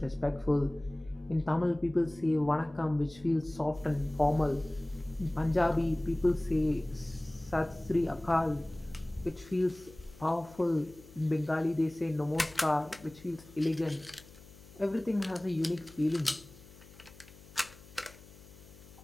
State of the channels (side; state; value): left; noise; hum, 21 dB below the sound